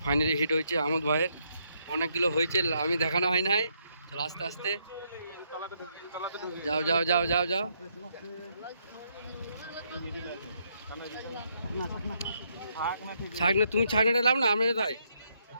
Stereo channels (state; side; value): inverted; both; correlation -0.75